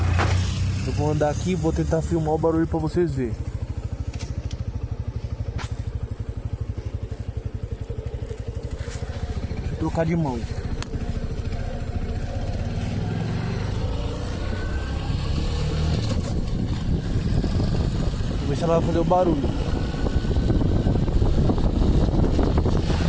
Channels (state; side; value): identical; both; correlation 1.00